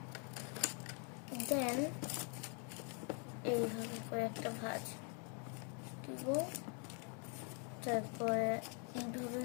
দেন এইভাবে করে একটা ভাঁজ দিব, তারপরে এইভাবে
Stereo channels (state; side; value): quieter; right; 38.4 dB